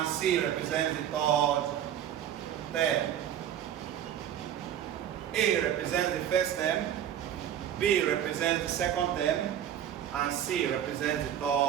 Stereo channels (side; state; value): left; quieter; 10.3 dB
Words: c represents the third term. A represents the first term, b represents the second term, and c represents the